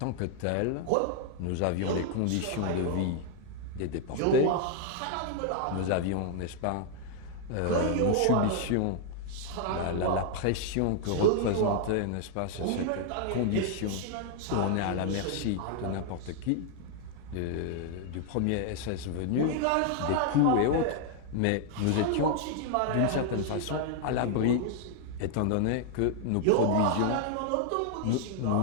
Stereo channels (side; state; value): both; different; correlation 0.00